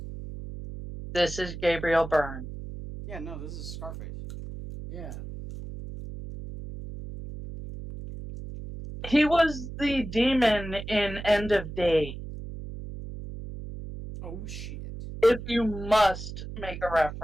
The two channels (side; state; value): right; noise; hum, 10 dB below the sound